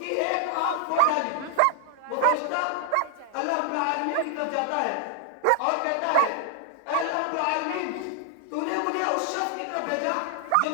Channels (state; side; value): different; both; correlation 0.00